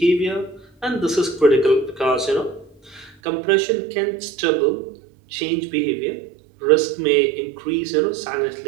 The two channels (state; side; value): drops out; left; at 3.2 s